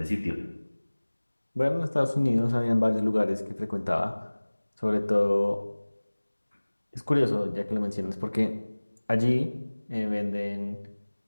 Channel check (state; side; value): inverted; both; correlation -1.00